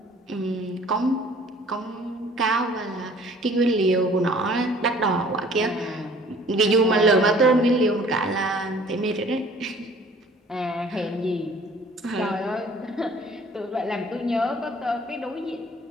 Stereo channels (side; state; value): both; normal; correlation 0.52